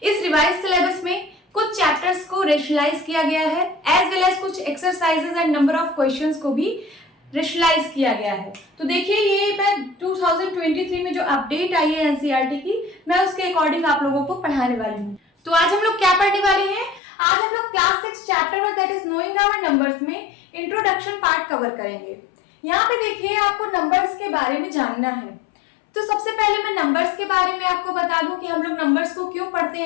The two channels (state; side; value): drops out; right; at 17.0 s